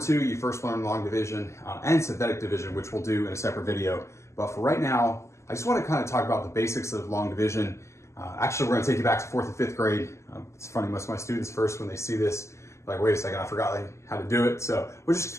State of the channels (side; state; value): right; late; 0.13 ms